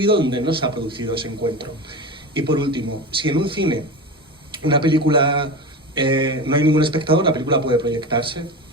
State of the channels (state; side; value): normal; both; correlation 0.26